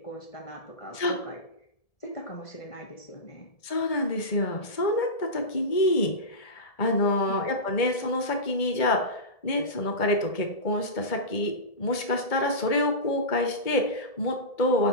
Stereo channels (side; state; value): right; late; 1.7 ms